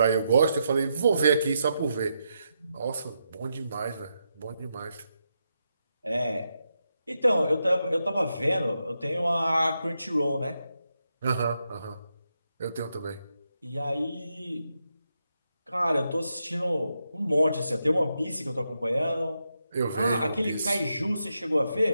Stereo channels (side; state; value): both; inverted; correlation -0.84